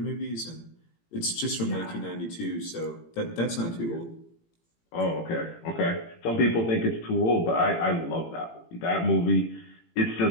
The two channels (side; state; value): right; late; 18 ms